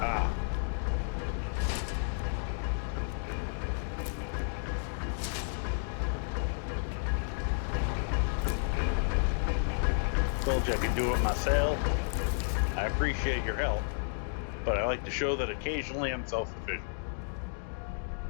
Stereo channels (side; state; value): right; silent; digital silence